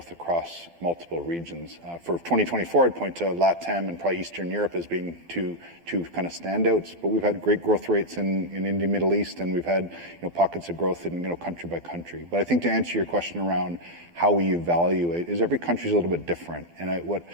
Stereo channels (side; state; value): left; late; 12 ms